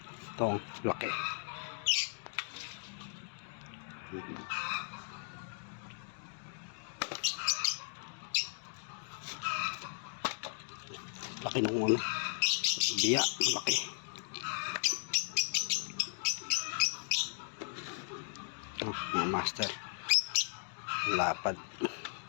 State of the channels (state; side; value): silent; right; digital silence